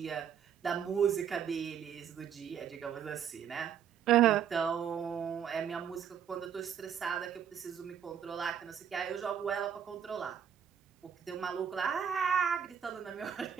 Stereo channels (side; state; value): left; quieter; 8.4 dB